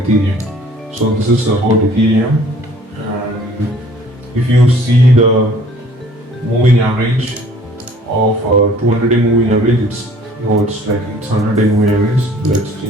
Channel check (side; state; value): both; normal; correlation 0.54